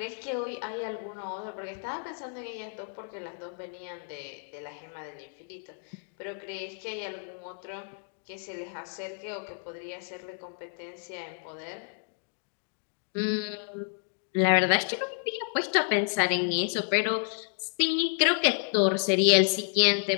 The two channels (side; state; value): right; silent; 57 dB below the other